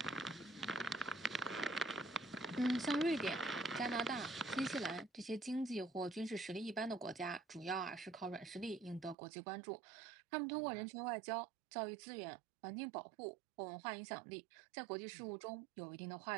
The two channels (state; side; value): drops out; left; at 9.2 s